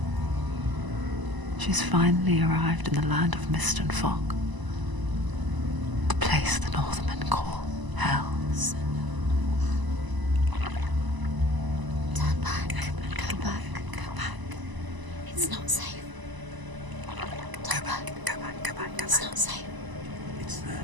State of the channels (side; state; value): left; late; 1.0 ms